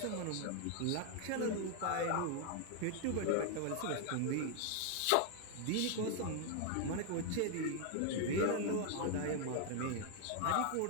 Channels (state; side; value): different; both; correlation 0.00